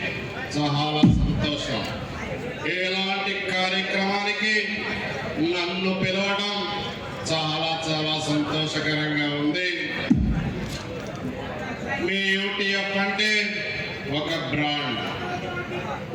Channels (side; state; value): both; identical; correlation 1.00